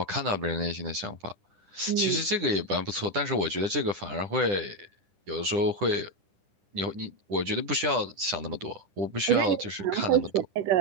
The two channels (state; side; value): late; left; 10 ms